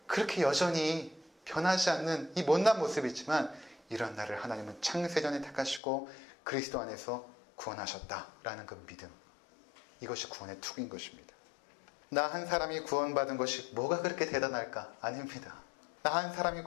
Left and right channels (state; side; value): drops out; right; at 5.8 s